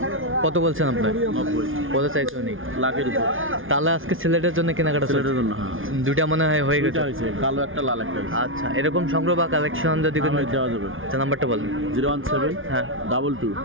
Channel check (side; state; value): left; late; 0.58 ms